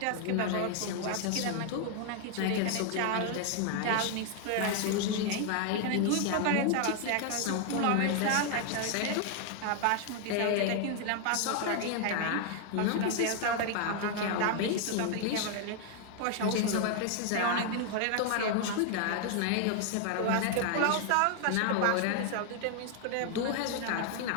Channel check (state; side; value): different; both; correlation 0.00